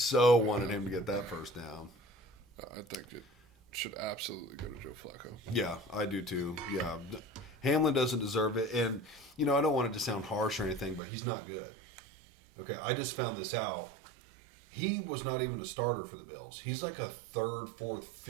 wanted him to get that first down. I think it should absolutely go to Joe Flacco. Yeah, I do too. Yeah. Hamlin doesn't deserve it. And, you know, I don't want it to sound harsh or anything, but he's not good. Okay, I just found this out. He was not even a starter for the Bills. He's like a 3rd, 4th,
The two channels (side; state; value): left; drops out; at 11.0 s